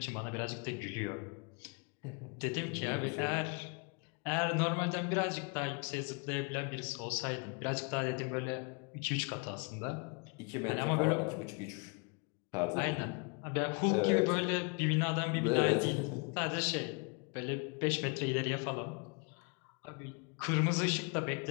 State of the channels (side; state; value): right; quieter; 34.1 dB